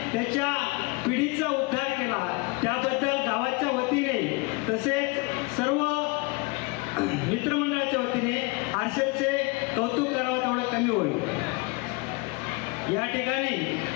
त्याच्या पिढीचा उद्धार केला. त्याबद्दल गावाच्या वतीने तसेच सर्व मित्रमंडळाच्या वतीने हर्षलचे कौतुक करावं तेवढं कमी होईल. या ठिकाणी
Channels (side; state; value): right; quieter; 26.9 dB